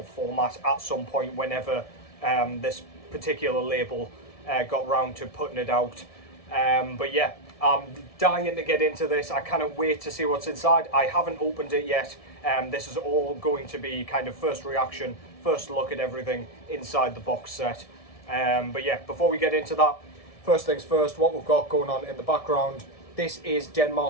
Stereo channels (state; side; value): late; right; 1.7 ms